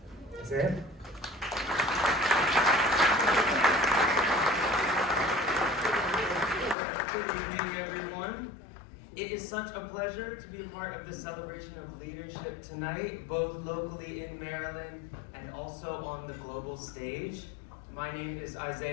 Isaiah? Good evening, everyone. It is such a pleasure to be a part of this celebration of leadership tonight, both locally in Maryland and also on the global stage. My name is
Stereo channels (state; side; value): drops out; right; at 6.8 s